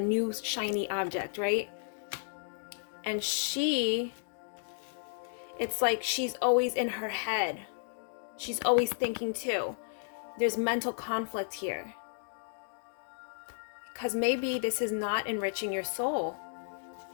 shiny object, right? And she, it's like she's always in her head. She's always thinking too. There's mental conflict here. Because maybe this is not enriching your soul.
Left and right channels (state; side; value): silent; right; digital silence